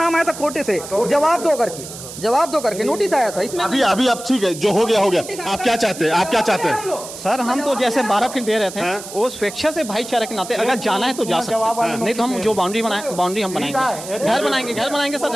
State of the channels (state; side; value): noise; right; hiss, 12 dB below the sound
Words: आया था कोर्ट से, जवाब दो करके नोटिस आया था इसमें। अभी अब ठीक है, जो हो गया हो गया। आप क्या चाहते हैं? सर हम तो जैसे 12 फीट दे रहे थे, वो स्वेच्छा से भाईचारे के नाते अगर जाना है तो जा सकते हैं, नहीं तो हम जो बाउंड्री हम बनाएंगे, घर बनाएंगे सर,